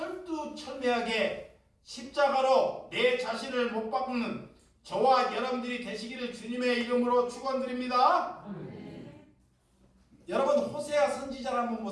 십자가로 내 자신을 못 박는 저와 여러분들이 되시기를 주님의 이름으로 축원드립니다. 여러분 호세아 선지자를 한번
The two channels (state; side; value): identical; both; correlation 1.00